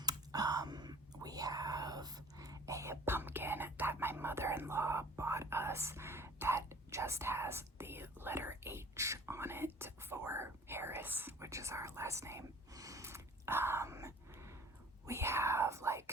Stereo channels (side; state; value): both; normal; correlation 0.48